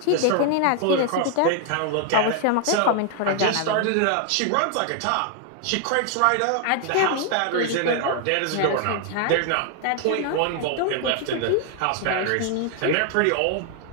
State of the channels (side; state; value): both; different; correlation 0.00